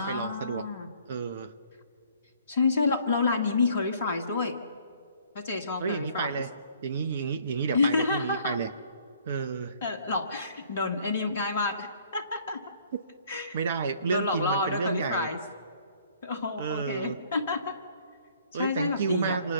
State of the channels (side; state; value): both; inverted; correlation -0.59